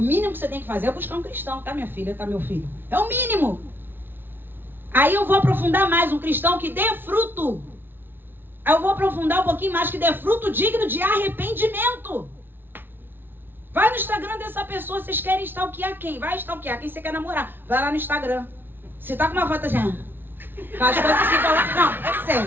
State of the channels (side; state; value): left; late; 0.10 ms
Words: mínimo que você tem que fazer é buscar um cristão, tá, minha filha, tá, meu filho? É o mínimo. Aí eu vou aprofundar mais, um cristão que dê fruto. Aí eu vou aprofundar um pouquinho mais, que dê fruto digno de arrependimento. Vai no Instagram dessa pessoa, vocês querem stalkear quem? Vai stalkear quem você quer namorar. Vai lá no Instagram. Se tá com uma foto assim, faz coisas assim, não, é